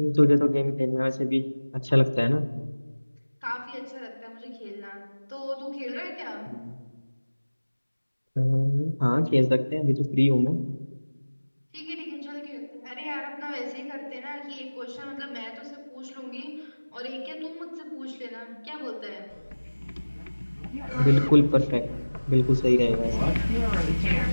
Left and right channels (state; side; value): inverted; both; correlation -1.00